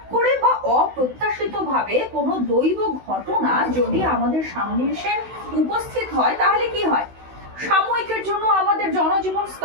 করে বা অপ্রত্যাশিত ভাবে কোনো দৈব ঘটনা যদি আমাদের সামনে এসে উপস্থিত হয়, তাহলে কি হয়? সাময়িকের জন্য আমাদের জনজীবন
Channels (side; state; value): left; late; 16 ms